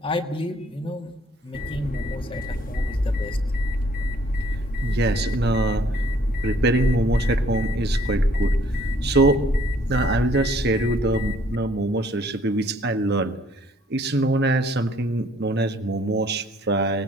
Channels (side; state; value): both; normal; correlation 0.61